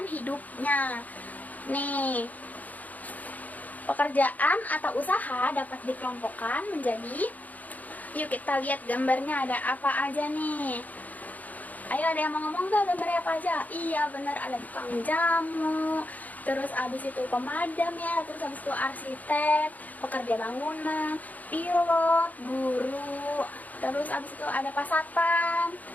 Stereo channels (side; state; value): right; late; 0.078 ms